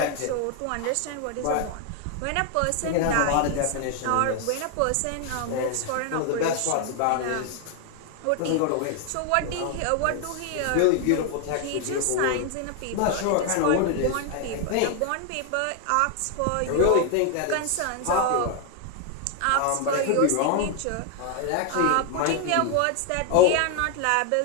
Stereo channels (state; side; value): different; both; correlation 0.00